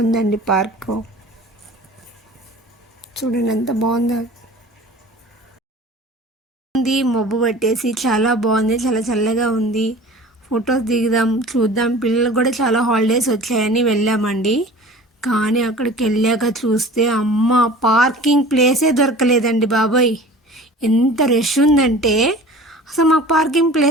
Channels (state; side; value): normal; both; correlation 0.42